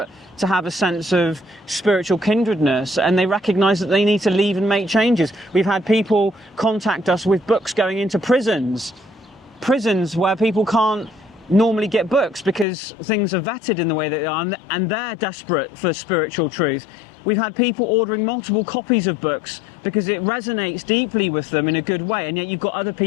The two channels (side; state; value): right; drops out; at 12.7 s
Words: to have a sense of spiritual kindredness, and they recognise that they need to leave and make changes. We've had people contact us with books going into prisons where people can't normally get books because things are vetted in the way that they are, and they're desperate for spiritual truth. We've had people ordering multiple copies of books because it resonates deeply with them in a good way, and yet you've got other